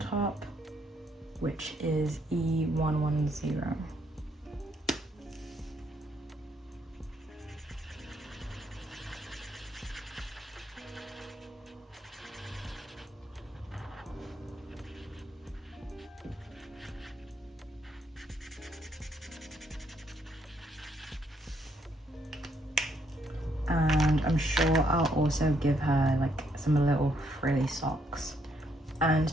which is E110. And I'm sure I'll also give her like some little frilly socks. And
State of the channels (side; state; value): both; normal; correlation 0.72